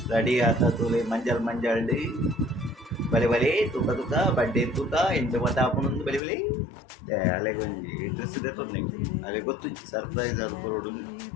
ರೆಡಿ ಆತ ತೂಲೆ ಮಂಜಲ್ ಮಂಜಲ್ಡಿ ಬಲೆ ಬಲೆ ತುಕ ತುಕ ಬಡ್ಡೆ ತುಕ ಎಂತ ಮತ ಆಪುನೊಂದು ಬಲೆ ಬಲೆ ಅಲೆ ಕೊಂಚಿ ಡ್ರೆಸ್ ದೆತ್ತೊಂದು ನಿಂಗೆ ಅಲೆ ಗೊತ್ತು ಸರ್ಪ್ರೈಸ್ ಅದು ಬರೋಡು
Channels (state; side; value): drops out; right; at 6.2 s